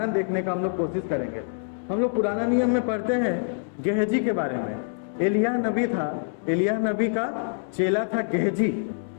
देखने का हम लोग कोशिश करेंगे। हम लोग पुराना नियम में पढ़ते हैं गेहजी के बारे में। एलिय्याह नबी था, एलिय्याह नबी का चेला था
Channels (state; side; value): silent; right; 61 dB below the other